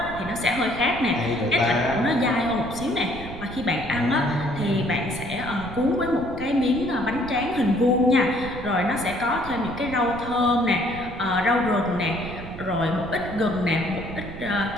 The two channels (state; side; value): noise; right; rumble, 12 dB below the sound